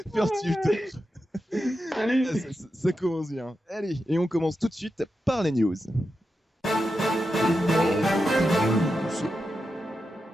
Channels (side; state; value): both; normal; correlation 0.89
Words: Merci. Salut. Ça commence bien. Allez, et on commence tout de suite par les news.